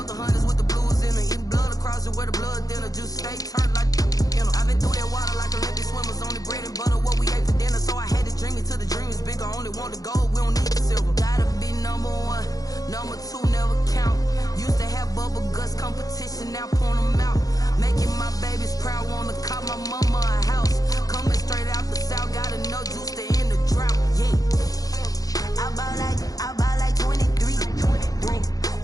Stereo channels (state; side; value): late; right; 0.17 ms